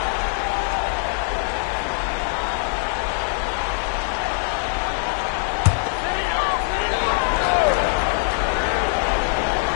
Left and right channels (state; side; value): silent; right; 57 dB below the other